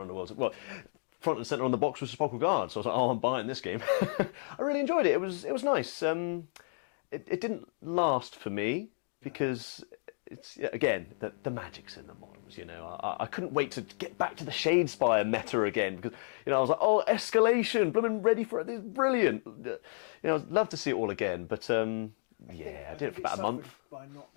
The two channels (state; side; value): silent; right; digital silence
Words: Underworlds. Well, front and centre on the box was Sepulchral Guard, so I was like, oh, I'm buying this game. I really enjoyed it. It was nice. It didn't last for me because it's again the magic's in the models. I couldn't wait to get back to the Shadespire meta again because I was like, oh, escalation, blooming ready for it. This is brilliant. I'd love to see it all again, but I think it suffered by not